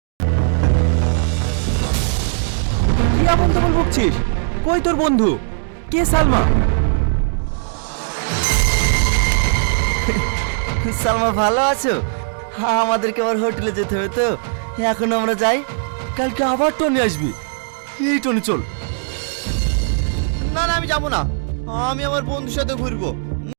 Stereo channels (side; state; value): left; silent; digital silence